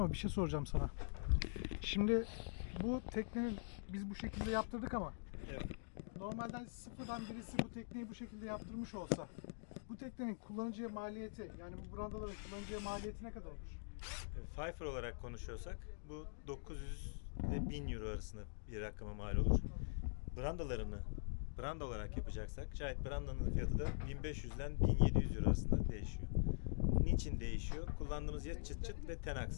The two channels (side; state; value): right; silent; digital silence